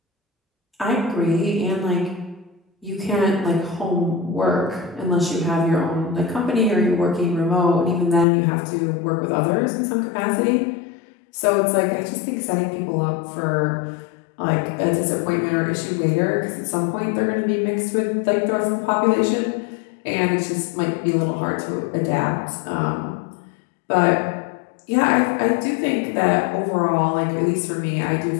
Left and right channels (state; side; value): drops out; right; at 8.2 s